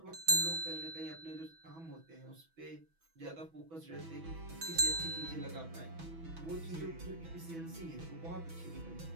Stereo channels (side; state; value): left; late; 6.1 ms